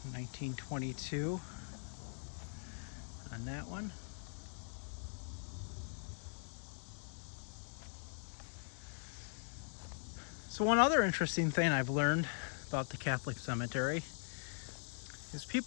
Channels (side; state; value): right; silent; 50 dB below the other